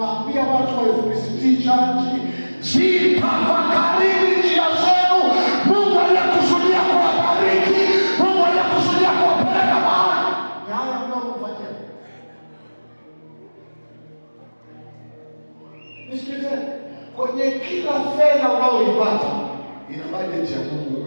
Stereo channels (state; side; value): inverted; both; correlation -1.00